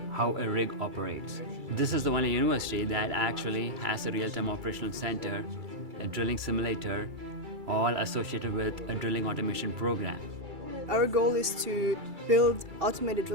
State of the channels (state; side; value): late; left; 2.3 ms